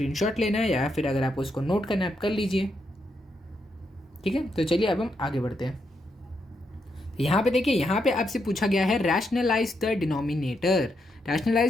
लेना है या फिर अगर आपको इसको नोट करना है आप कर लीजिए, ठीक है। तो चलिए अब हम आगे बढ़ते हैं। यहाँ पे देखिए, यहाँ पे आपसे पूछा गया है rationalize the denominator.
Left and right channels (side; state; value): both; normal; correlation 0.80